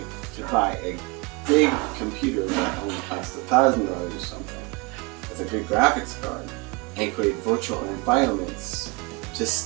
to buy a big computer that only costs $1,000 or something with a good graphics card and create virtual environments to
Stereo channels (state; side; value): quieter; left; 26.6 dB